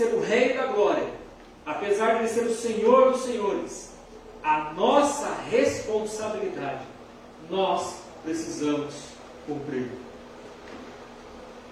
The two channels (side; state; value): both; identical; correlation 1.00